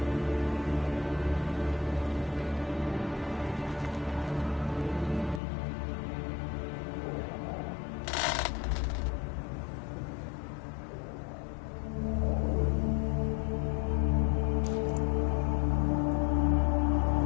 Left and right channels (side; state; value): right; drops out; at 5.4 s